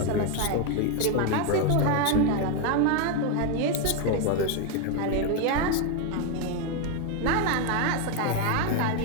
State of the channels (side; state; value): both; different; correlation 0.01